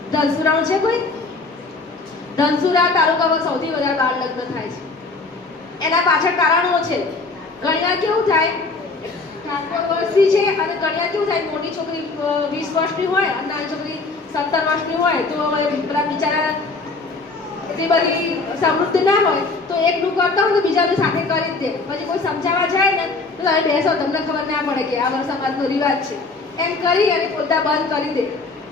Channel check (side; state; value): right; quieter; 3.8 dB